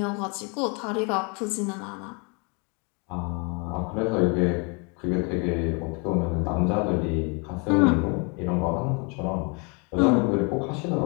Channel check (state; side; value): quieter; right; 33.1 dB